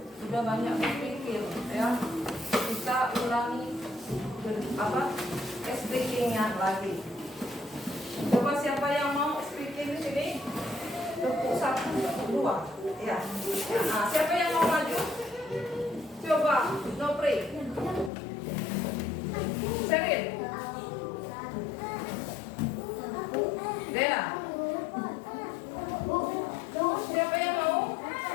banyak berpikir, ya. Kita ulangi speakingnya lagi. Coba siapa yang mau speaking di sini? Tepuk 1, tepuk 2. Ya. Nah, siapa yang mau maju? Coba, Nopri. Serin. Dea. Siapa yang mau?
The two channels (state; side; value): drops out; right; at 18.1 s